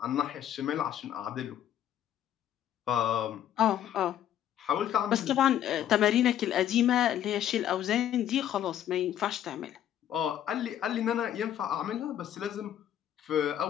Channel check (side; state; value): right; quieter; 10.8 dB